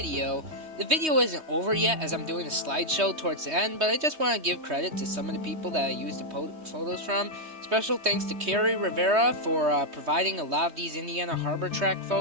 The video isn't over yet as I'm doing a slideshow towards the end, but I just want to give credit to some of the people that I used the photos from. Special thanks to Carrie Rivera for providing a lot of these Indiana Harbor track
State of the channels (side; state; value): left; late; 3.2 ms